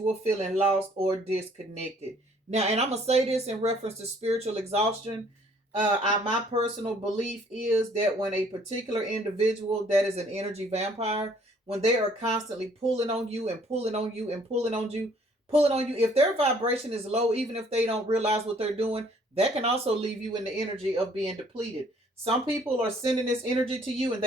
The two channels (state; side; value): normal; both; correlation 0.60